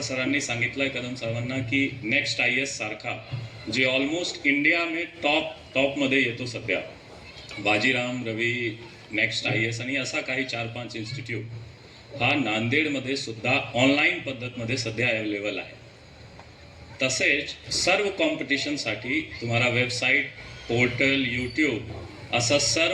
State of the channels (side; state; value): both; identical; correlation 1.00